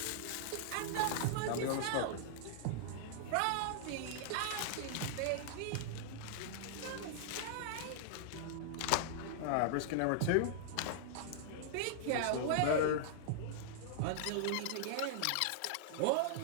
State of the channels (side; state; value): both; different; correlation -0.01